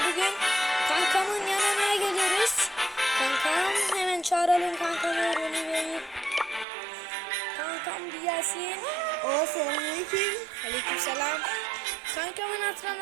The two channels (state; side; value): drops out; left; at 6.7 s